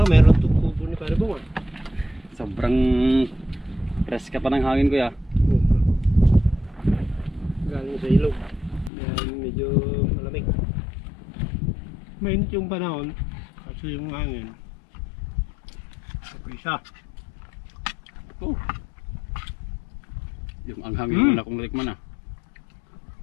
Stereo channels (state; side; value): drops out; right; at 8.9 s